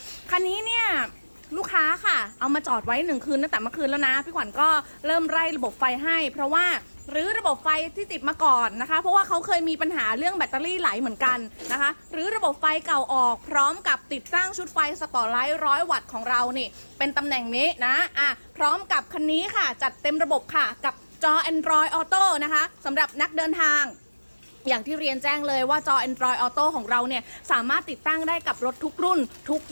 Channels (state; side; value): inverted; both; correlation -1.00